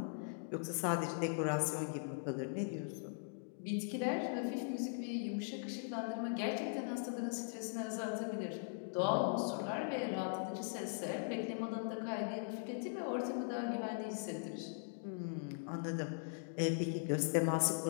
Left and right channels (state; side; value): silent; right; digital silence